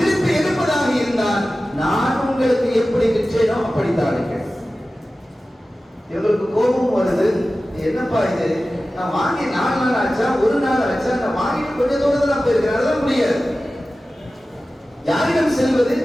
எடுப்பதாக இருந்தால் நான் உங்களுக்கு எப்படி விற்றேனோ அப்படித்தான் இருக்கேன். இவங்களுக்கு கோபம் வருது. என்னப்பா இது, நான் வாங்கி 4 நாள் ஆச்சா, 1 நாள் ஆச்சா, நான் வாங்கிட்டு கொஞ்சம் தூரத்தில் நான் போயிருக்கிறேன், அதெல்லாம் முடியாது. யாரிடம் செல்வது?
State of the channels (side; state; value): both; normal; correlation 0.95